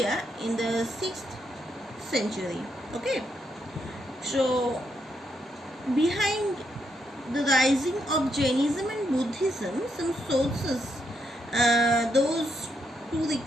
in the 6th century. Okay, so behind the rising of Jainism and Buddhism, some sources, those to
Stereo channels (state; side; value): normal; both; correlation 0.79